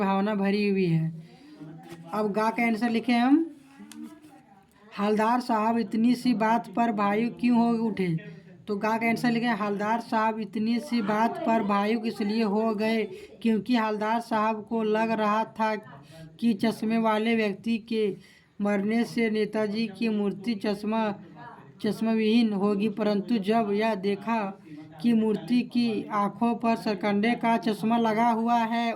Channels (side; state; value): both; identical; correlation 1.00